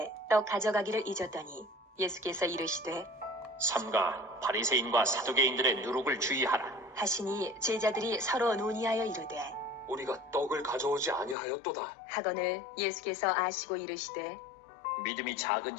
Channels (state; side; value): drops out; right; at 11.4 s